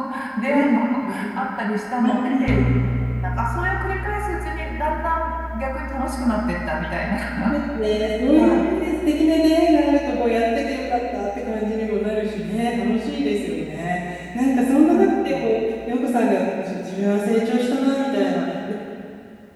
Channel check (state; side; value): identical; both; correlation 1.00